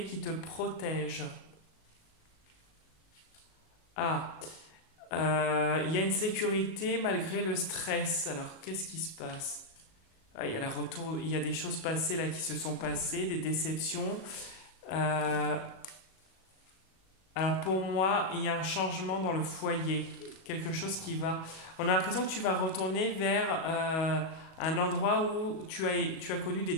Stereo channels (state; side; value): late; right; 37 ms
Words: qui te protège. Ah, il y a une sécurité malgré le stress. Alors, qu'est-ce qui se passe? Ah, il y a des choses passées là qui se sont passées, des déceptions. Alors pour moi, il y a un changement dans le foyer, quelque chose qui va... On a l'impression que tu vas retourner vers un endroit où tu as connu des